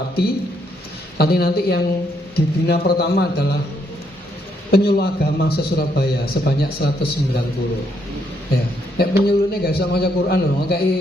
Nanti yang dibina pertama adalah penyuluh agama se-Surabaya sebanyak 190 ya. Penyuluhnya gak bisa baca Quran loh,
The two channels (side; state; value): both; normal; correlation 0.74